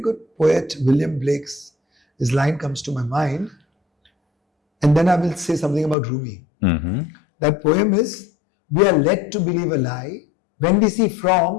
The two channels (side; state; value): right; drops out; at 6.0 s